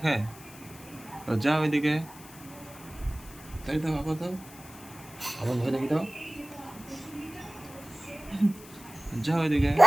যাও এদিকে, তাই দাও, আবার দাও, আবার ভয় দেখে দাও। যাও এদিকে।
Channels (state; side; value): noise; left; hiss, 19 dB below the sound